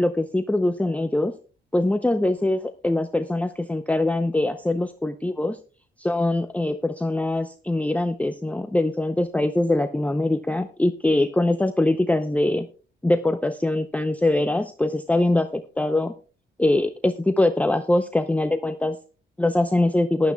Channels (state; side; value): normal; both; correlation 0.94